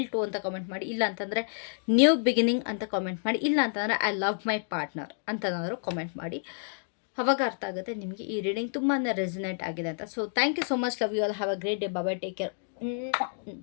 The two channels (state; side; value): silent; right; digital silence